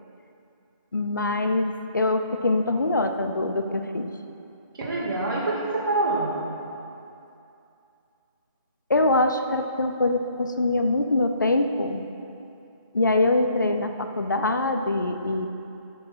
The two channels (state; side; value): inverted; both; correlation -0.61